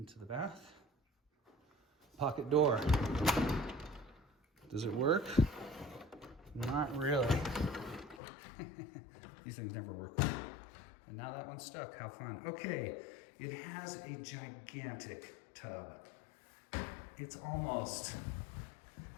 the bath. Pocket door. Does it work? Not really. These things never work. And now that one's stuck. How fun. Okay, it has a gigantic tub. It's almost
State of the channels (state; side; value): drops out; right; at 8.2 s